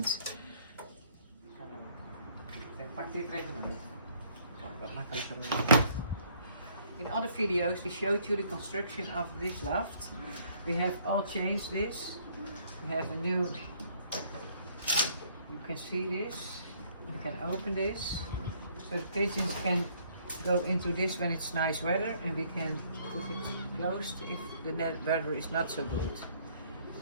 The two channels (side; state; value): both; inverted; correlation -0.63